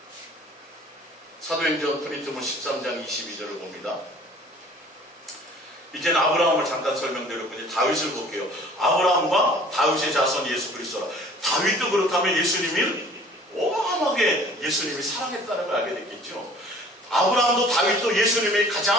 사도행전 프린트본 13장 22절을 봅니다. 이제는 아브라함을 잠깐 설명드렸고 이제 다윗을 볼게요. 아브라함과 다윗의 자손 예수 그리스도라. 다윗도 그렇다면 예수님을 어마어마하게 예수님이 사랑했다는 걸 알게 됐겠죠. 아브라함도 다윗도 예수님이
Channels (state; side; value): normal; both; correlation 0.50